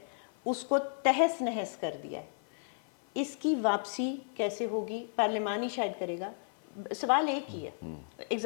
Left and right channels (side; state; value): right; silent; 56 dB below the other